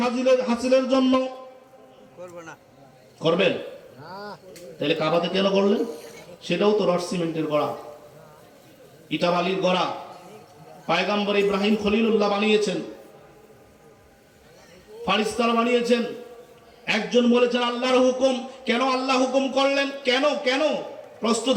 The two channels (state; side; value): identical; both; correlation 1.00